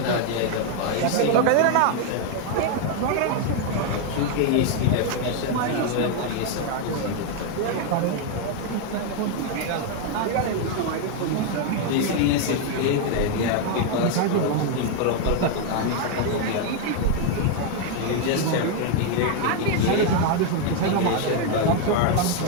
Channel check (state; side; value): different; both; correlation 0.00